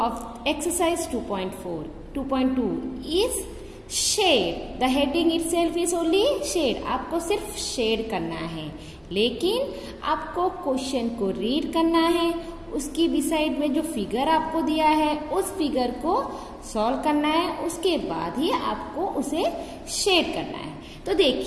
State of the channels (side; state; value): both; identical; correlation 1.00